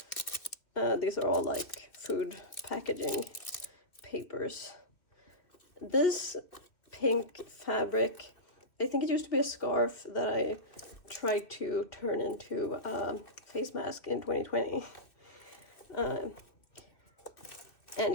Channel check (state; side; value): late; right; 2.7 ms